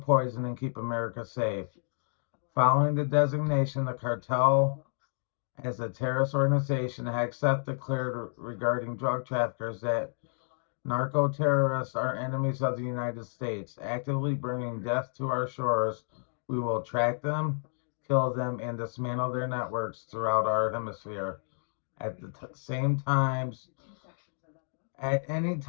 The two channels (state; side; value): silent; right; digital silence